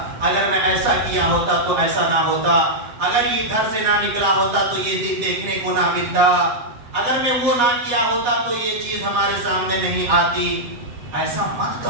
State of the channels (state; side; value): late; left; 7.4 ms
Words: اگر میں ایسا کیا ہوتا تو ایسا نہ ہوتا، اگر یہ گھر سے نہ نکلا ہوتا تو یہ دن دیکھنے کو نہ ملتا، اگر میں وہ نہ کیا ہوتا تو یہ چیز ہمارے سامنے نہیں آتی۔ ایسا مت